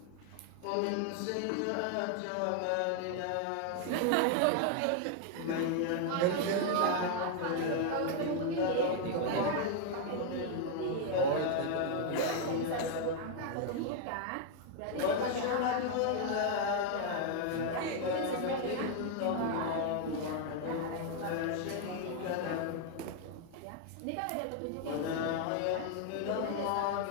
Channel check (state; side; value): different; both; correlation 0.00